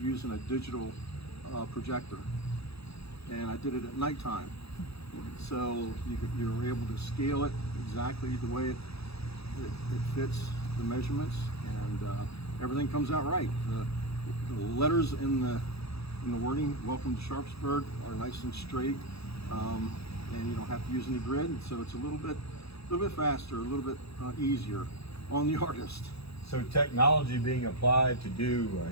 using a digital projector. And I did it at nighttime. So you were able to scale it exactly the way it fits the measurements, and everything comes out right. The letters in the wording, "Welcome to Sharpsburg," are nice and straight. And you don't have to use any grid, so it's a little bit faster, a little bit easier on the artist. So technology being applied to do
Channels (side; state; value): right; late; 0.77 ms